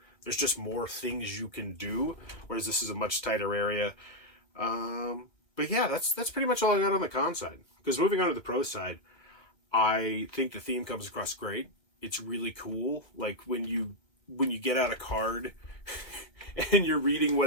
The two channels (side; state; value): right; late; 1.6 ms